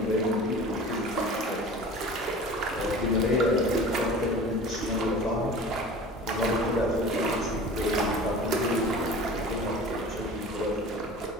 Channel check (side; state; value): both; normal; correlation 0.40